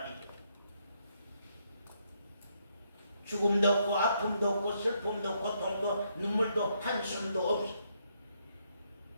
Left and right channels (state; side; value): inverted; both; correlation -0.75